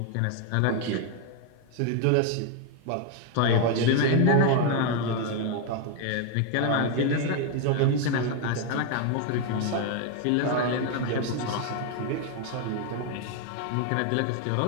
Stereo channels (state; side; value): different; both; correlation 0.01